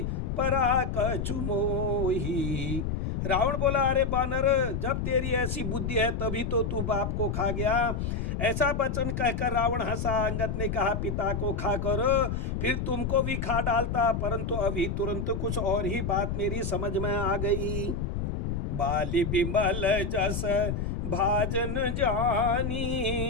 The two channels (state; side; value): noise; left; rumble, 2 dB below the sound